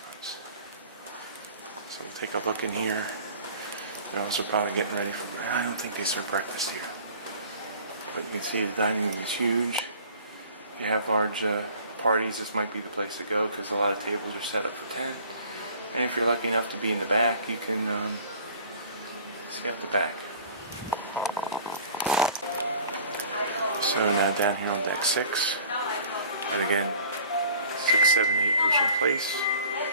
So we'll take a look in here. They're also probably getting ready for, I don't think they serve breakfast here. But you can see the dining room is huge. If you have large parties, this might be the place to go because a lot of tables are set up for 10. And if you're lucky enough to be in the back, you can see out the back. So now down here on deck 6, and again, 6, 7, 8 Ocean Place,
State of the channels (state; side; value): inverted; both; correlation -0.48